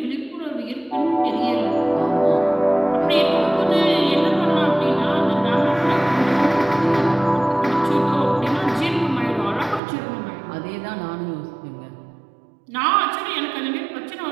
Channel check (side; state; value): left; drops out; at 9.8 s